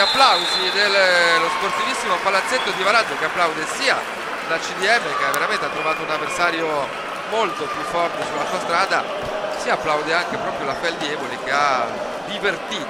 dello sportivissimo palazzetto di Varazze, che applaude sia la CDM, che veramente ha trovato un avversario molto più forte sulla sua strada, si applaude anche proprio la Feldi Eboli, che ha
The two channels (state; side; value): identical; both; correlation 1.00